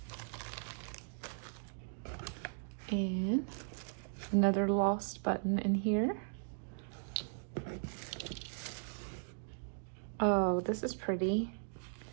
And another lost button in here. Oh, this is pretty.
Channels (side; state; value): left; silent; digital silence